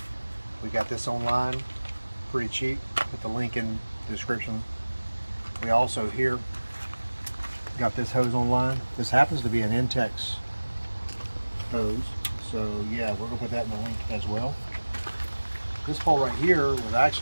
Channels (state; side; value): inverted; both; correlation -1.00